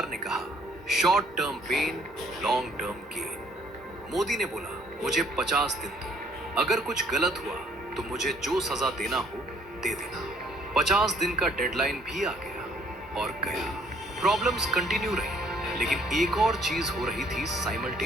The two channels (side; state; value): both; normal; correlation 0.62